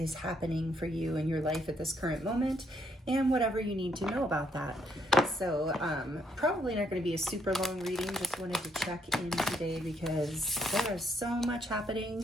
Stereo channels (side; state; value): both; normal; correlation 0.72